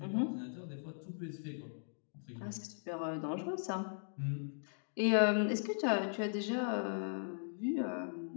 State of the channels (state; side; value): silent; right; digital silence